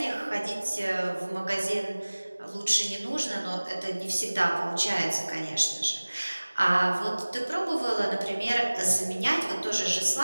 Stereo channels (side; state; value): both; inverted; correlation -1.00